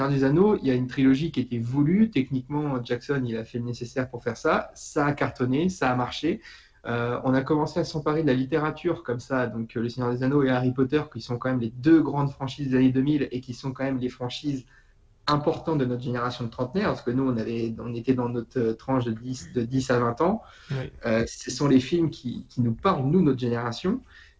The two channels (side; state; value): both; identical; correlation 1.00